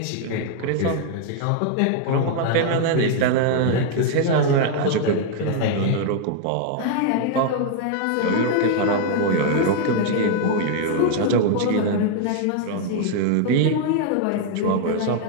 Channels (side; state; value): both; different; correlation 0.00